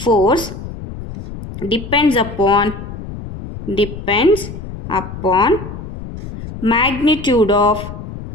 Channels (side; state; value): left; noise; rumble, 11 dB below the sound